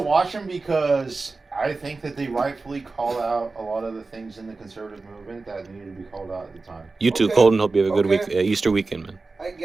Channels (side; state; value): left; quieter; 3.8 dB